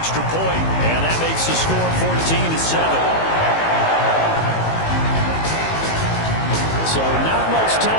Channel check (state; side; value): late; right; 18 ms